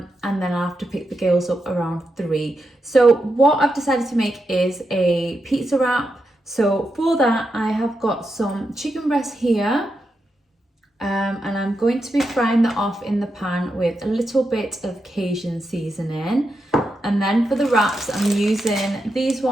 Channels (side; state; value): both; normal; correlation 0.86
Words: then I'll have to pick the girls up around 3. So what I've decided to make is a pizza wrap. So for that, I have got some chicken breast here. And I'm going to be frying that off in the pan with a little bit of Cajun seasoning. And then for the wraps, I'm using these